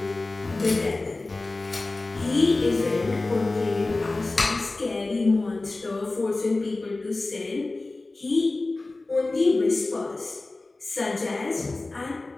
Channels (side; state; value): right; quieter; 3.2 dB